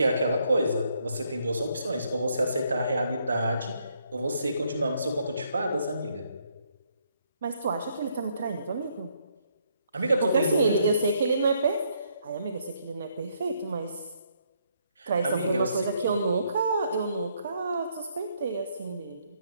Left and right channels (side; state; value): both; inverted; correlation -0.72